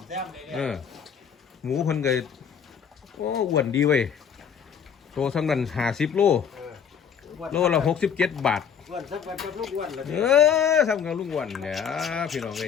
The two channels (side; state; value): right; quieter; 7.5 dB